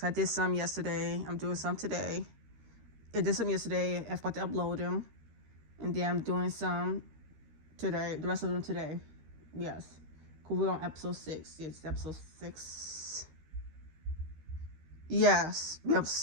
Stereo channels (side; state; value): left; late; 13 ms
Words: I did some yesterday. I'm doing some today. I did some yesterday. I forgot to upload them. And then I'm doing some today. The rest of them today. Yes. Because we're on episode 6. Yes, episode 6. Yes. Episode